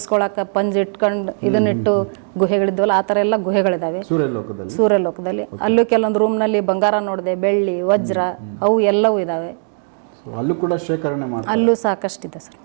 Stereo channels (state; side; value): silent; left; digital silence